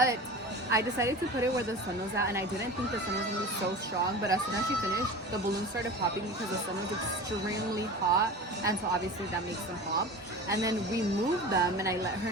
I decided to put it where the sun was at, and I didn't think the sun was going to be so strong, but as soon as she finished, the balloons started popping because the sun was extremely hot, and so obviously that makes them pop. And then we moved them, and I let her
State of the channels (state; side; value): normal; both; correlation 0.34